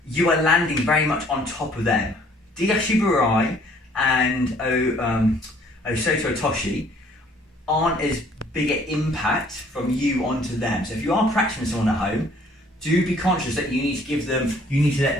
are landing very much on top of them. Diashiburai and Osoto Toshi aren't as big an impact from you onto them. So if you are practicing someone at home, do be conscious that you need to let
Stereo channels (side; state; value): both; normal; correlation 0.59